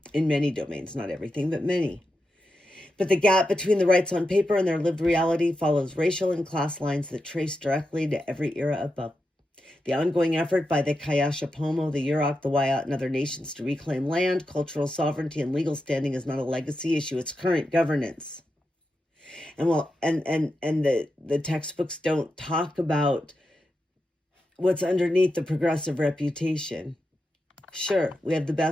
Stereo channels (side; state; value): both; normal; correlation 0.88